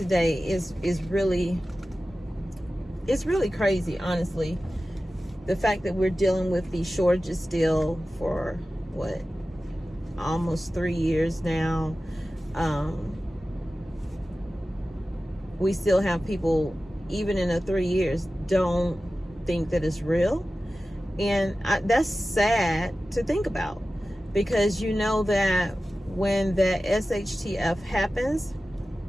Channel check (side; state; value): both; normal; correlation 0.95